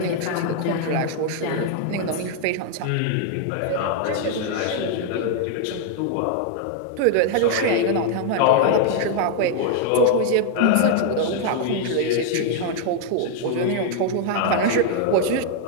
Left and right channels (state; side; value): different; both; correlation 0.00